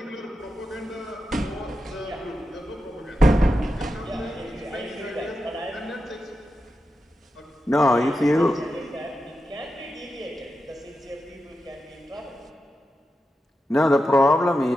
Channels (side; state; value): both; normal; correlation 0.89